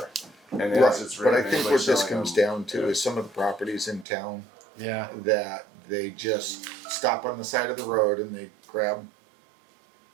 And Right, as it's but I written, think anybody what this selling comes them- down to is some of the properties in town Yeah. that they just stop on the side of the road and they grab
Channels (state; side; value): drops out; left; at 4.0 s